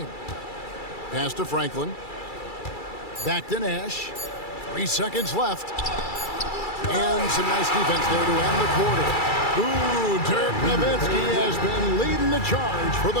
Pass to Franklin. Back to Nash. 3 seconds left. And some nice defense there to end the quarter. Ooh, Dirk Nowitzki has been leading the charge for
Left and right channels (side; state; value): right; late; 2.3 ms